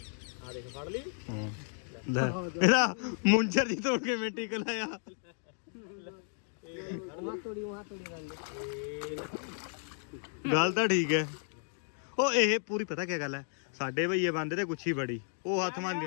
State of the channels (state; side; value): silent; right; 56 dB below the other